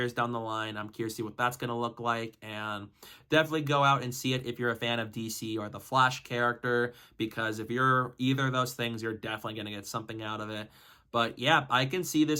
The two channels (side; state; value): both; identical; correlation 1.00